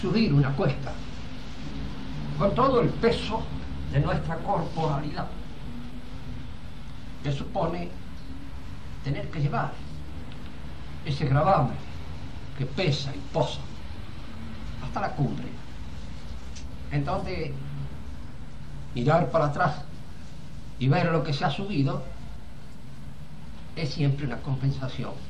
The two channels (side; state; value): both; identical; correlation 1.00